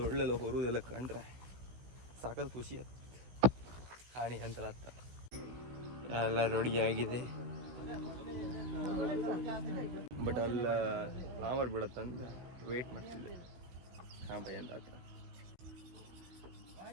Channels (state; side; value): late; left; 16 ms